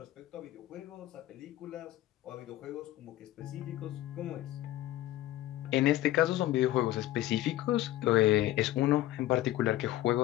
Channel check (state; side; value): quieter; right; 14.9 dB